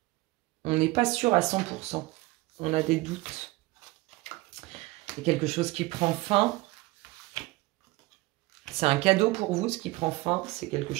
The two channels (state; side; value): quieter; left; 20.9 dB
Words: On n'est pas sûr à 100%. On a des doutes. Il y a quelque chose qui prend fin. C'est un cadeau pour vous, ce qui prend fin. C'est quelque